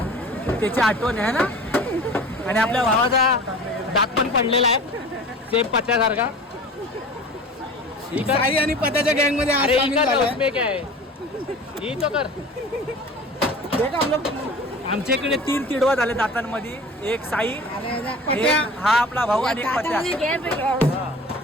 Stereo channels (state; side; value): normal; both; correlation 0.40